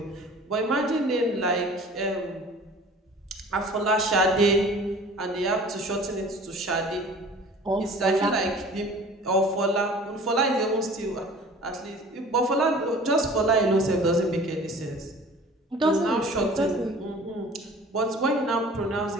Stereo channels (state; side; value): normal; both; correlation 0.45